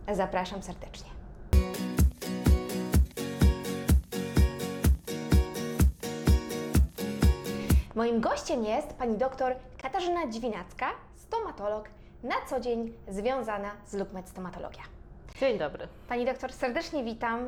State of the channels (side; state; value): both; identical; correlation 1.00